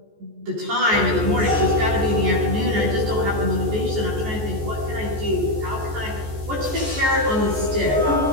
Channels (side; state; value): left; late; 14 ms